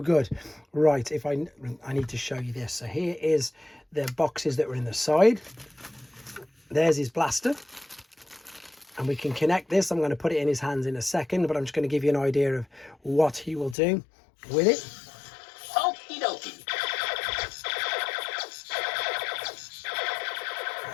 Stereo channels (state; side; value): drops out; right; at 13.8 s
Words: good. Right, if I need to show you this. So here is the boxes that were in the side. There's his blaster. And we can connect this. I'm going to put it in his hands in a second, but I'm just going to give you an idea of what he will do with it. Okie dokie.